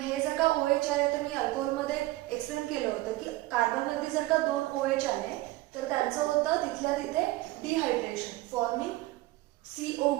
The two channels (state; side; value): quieter; left; 18.8 dB